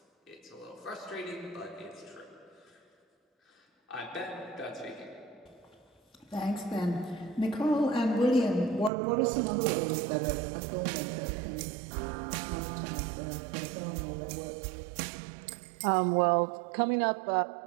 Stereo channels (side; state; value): left; drops out; at 8.9 s